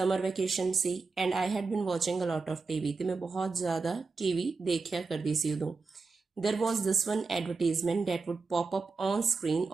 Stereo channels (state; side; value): quieter; left; 4.3 dB